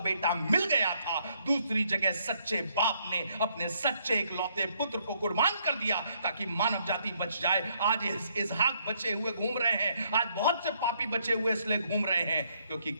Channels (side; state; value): both; inverted; correlation -0.70